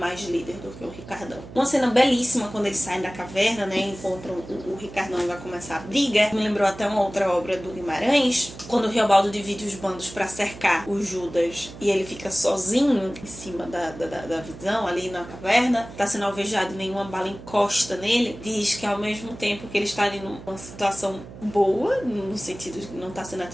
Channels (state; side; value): noise; right; hum, 15 dB below the sound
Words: líder do que o Ricardão. Uma cena belíssima quando eles saem da caverna, né? Encontram o Ricardão e vai começar a briga. Me lembrou até uma outra obra do Guimarães. Quando o Riobaldo divide os bandos para cercar o Judas e ele fica sozinho em cima da visão ali na caverna. Tá sendo alvejado, nenhuma bala encosta nele, diz que ao mesmo tempo que ele está ali numa situação boa, no sentido de que não está sendo